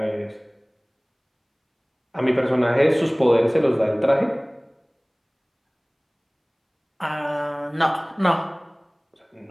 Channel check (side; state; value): both; identical; correlation 1.00